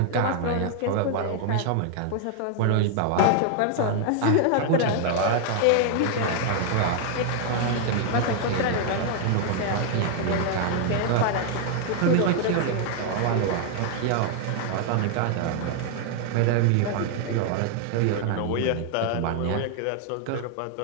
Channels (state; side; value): different; both; correlation 0.00